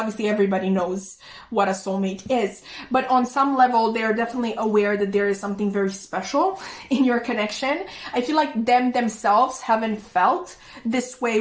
everybody knows what a soulmate is. But on some level, they're definitely aware that there is something very special in your connection. I feel like themselves haven't felt this way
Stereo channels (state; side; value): identical; both; correlation 1.00